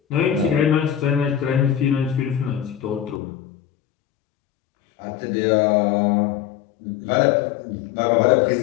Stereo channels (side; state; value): right; drops out; at 3.2 s